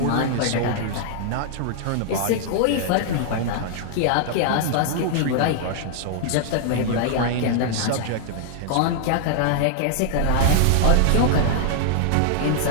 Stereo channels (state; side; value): different; both; correlation -0.01